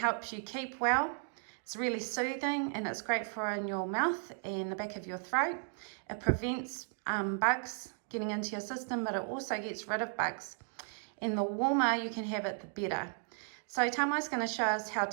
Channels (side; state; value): left; silent; 54 dB below the other